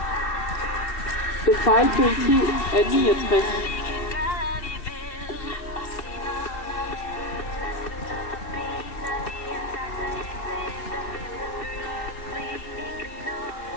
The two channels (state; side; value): late; right; 2.7 ms